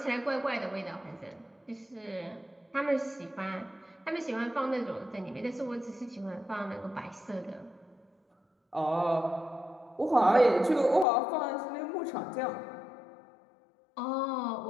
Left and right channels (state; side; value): drops out; right; at 11.1 s